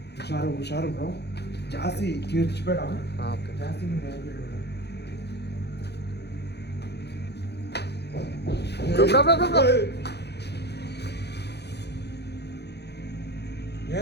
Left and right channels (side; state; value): right; late; 0.48 ms